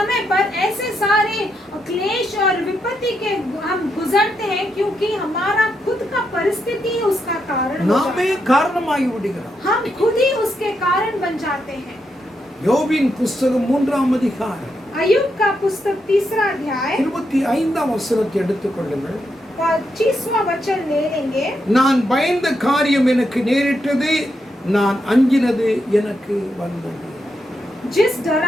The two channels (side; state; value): both; normal; correlation 0.82